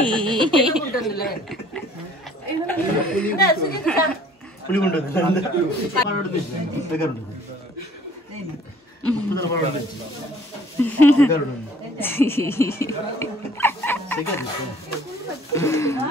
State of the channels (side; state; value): both; normal; correlation 0.55